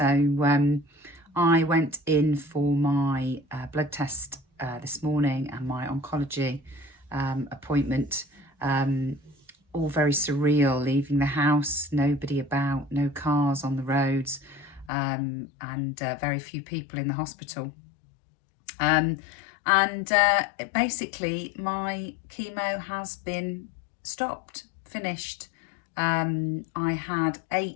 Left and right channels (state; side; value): drops out; right; at 14.9 s